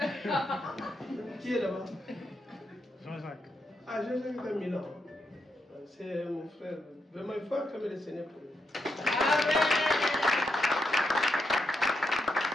Qui est là-bas? Jean-Jacques. Ah, Jean-Jacques est à Milan. C'est mon frère. Vraiment, il faut acclamer le Seigneur pour lui. Amen.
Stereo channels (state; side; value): normal; both; correlation 0.82